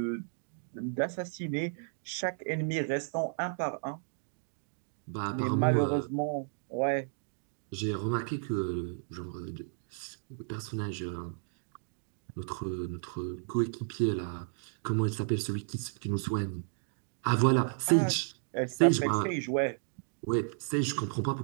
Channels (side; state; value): left; silent; digital silence